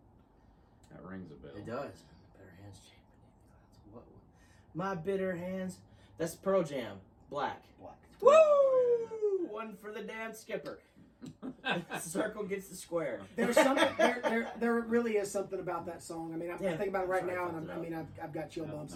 That rings a bell. It does. Bitter hands chafe beneath the clouds. What? My bitter hands. That's Pearl Jam. Black. Black. Woo! One for the damn skipper. Circle gets the square. There's something. There really is something about that song. I mean, I think about it right Sorry, now, fucked and it up. I've got chill bumps.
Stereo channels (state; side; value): identical; both; correlation 1.00